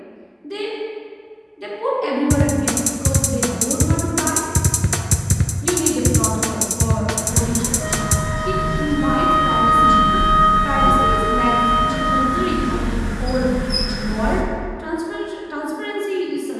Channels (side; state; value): both; identical; correlation 1.00